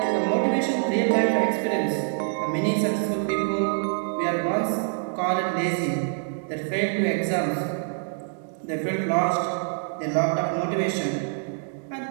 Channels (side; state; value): left; silent; digital silence